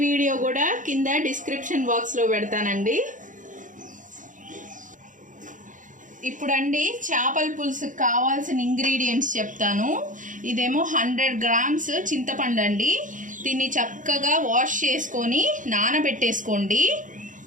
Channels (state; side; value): late; left; 0.37 ms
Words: వీడియో కూడా కింద డిస్క్రిప్షన్ బాక్స్లో పెడతానండి. ఇప్పుడండి చేపల పులుసుకి కావాల్సిన ఇంగ్రీడియంట్స్ చెప్తాను. ఇదేమో 100 గ్రామ్స్ చింతపండు అండి. దీన్ని చక్కగా వాష్ చేసుకొని నానబెట్టేసుకోండి.